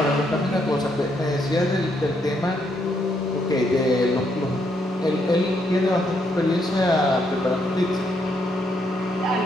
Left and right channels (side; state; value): both; normal; correlation 0.75